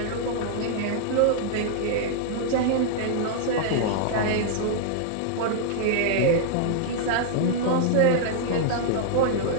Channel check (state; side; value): different; both; correlation -0.01